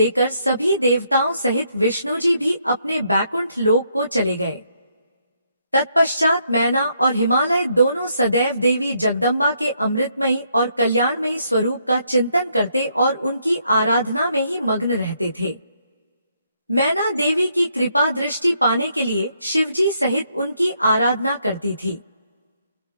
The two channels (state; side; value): inverted; both; correlation -0.73